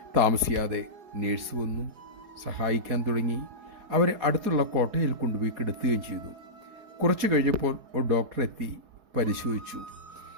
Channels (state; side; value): late; left; 4.7 ms